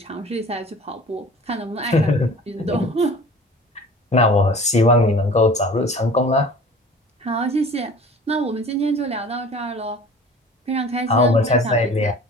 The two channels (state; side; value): normal; both; correlation 0.44